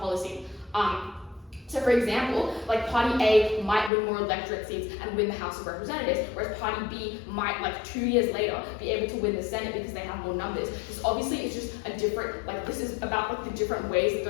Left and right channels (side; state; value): right; drops out; at 3.9 s